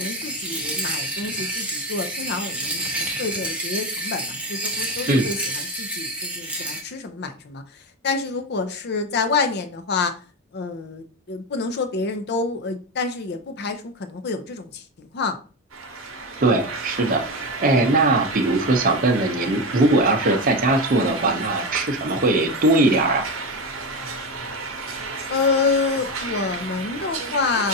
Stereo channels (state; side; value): normal; both; correlation 0.16